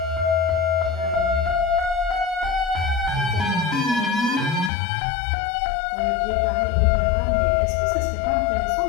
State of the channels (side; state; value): right; drops out; at 4.7 s